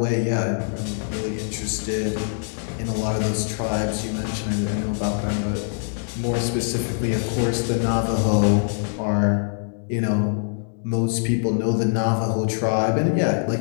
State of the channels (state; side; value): silent; right; digital silence